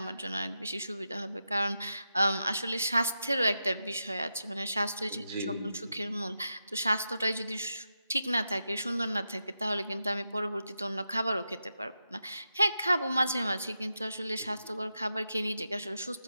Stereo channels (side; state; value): both; inverted; correlation -0.88